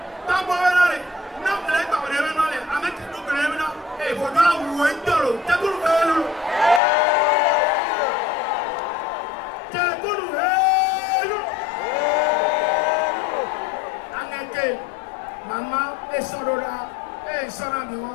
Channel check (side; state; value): right; drops out; at 6.8 s